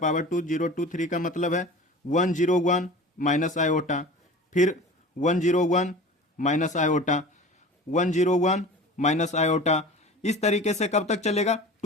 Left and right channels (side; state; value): both; normal; correlation 0.38